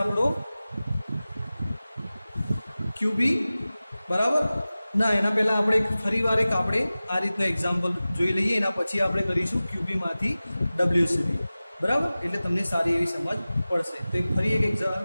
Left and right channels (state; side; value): inverted; both; correlation -0.97